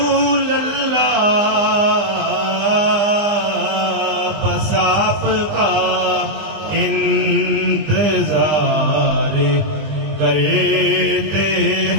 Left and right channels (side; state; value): left; late; 20 ms